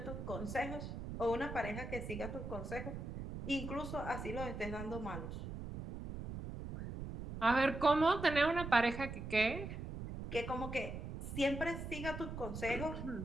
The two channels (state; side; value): noise; right; rumble, 7 dB below the sound